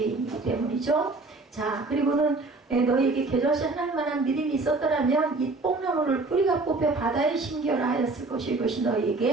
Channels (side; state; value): left; quieter; 3.4 dB